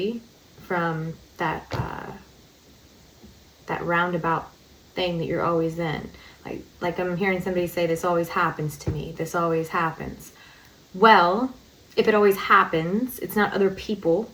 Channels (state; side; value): identical; both; correlation 1.00